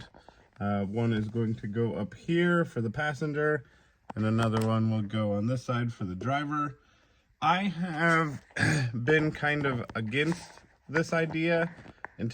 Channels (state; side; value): identical; both; correlation 1.00